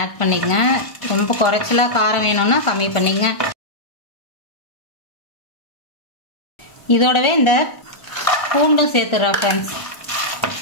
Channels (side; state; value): right; late; 1.4 ms